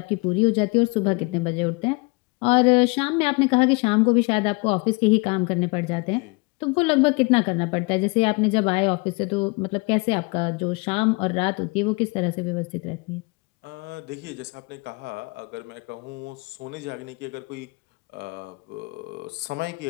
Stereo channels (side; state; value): right; quieter; 28.4 dB